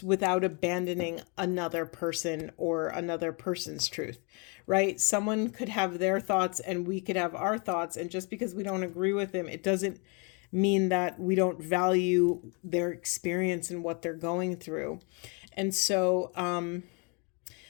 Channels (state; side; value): quieter; right; 33.0 dB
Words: without abandoning another person or another person's truth, right? Someone could have their thoughts and we could have our thoughts, and just because we don't agree with them, it doesn't mean that we don't value their experience and what they're going through. And so,